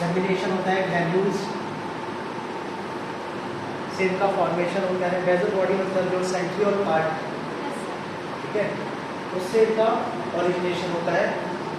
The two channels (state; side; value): identical; both; correlation 1.00